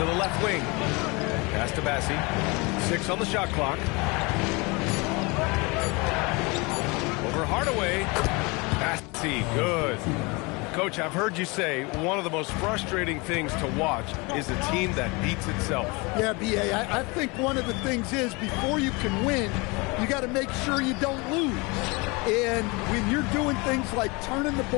the left wing. Pass to Bassey. 6 on the shot clock. Over Hardaway. Bassey, good. Coach, I've heard you say one of the most frustrating things to watch is a team that beats itself. Yeah, B.A., I think one of the things is before you can win, you got to make sure you don't lose. And when you're doing things like turning the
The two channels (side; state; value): right; quieter; 27.1 dB